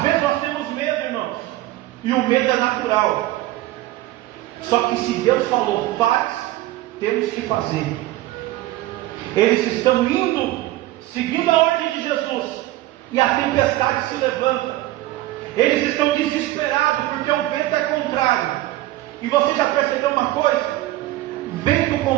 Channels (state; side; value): quieter; left; 16.6 dB